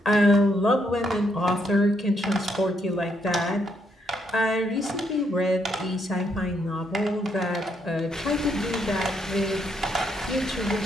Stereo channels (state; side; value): normal; both; correlation 0.75